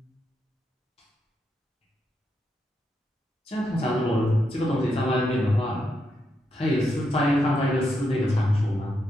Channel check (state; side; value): normal; both; correlation 0.82